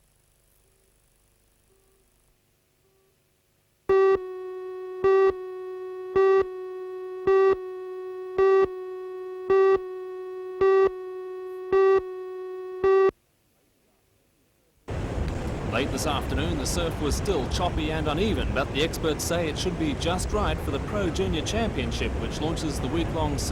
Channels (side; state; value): both; identical; correlation 1.00